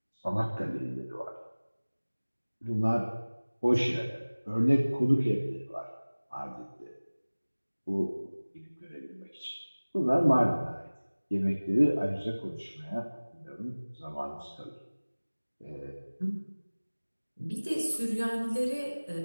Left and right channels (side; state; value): both; inverted; correlation -1.00